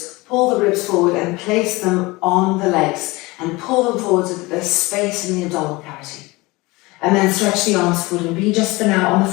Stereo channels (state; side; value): quieter; right; 22.5 dB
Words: pull the ribs forward and place them on the legs and pull them forward so that there's space in the abdominal cavity. And then stretch the arms forward and be just for now on the